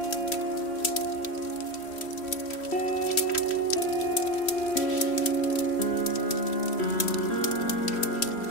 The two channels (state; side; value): late; right; 3.1 ms